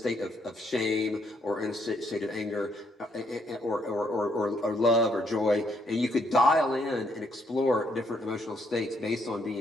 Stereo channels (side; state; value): both; normal; correlation 0.72